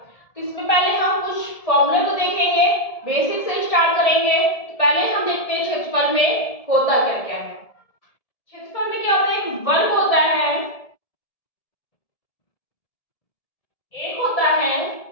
तो इसमें पहले हम कुछ फॉर्मूले को देखेंगे, बेसिक से स्टार्ट करेंगे। तो पहले हम देखते हैं क्षेत्रफल में होता क्या क्या है। क्षेत्रफल में क्या होता है, एक वर्ग होता है, एक होता है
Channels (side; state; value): right; late; 1.7 ms